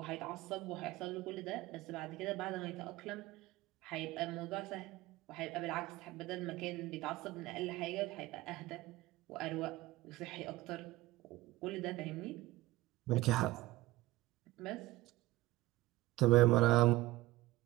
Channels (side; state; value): left; quieter; 18.1 dB